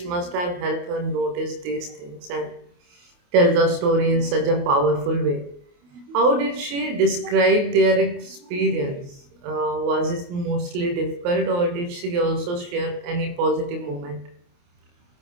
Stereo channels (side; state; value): left; late; 28 ms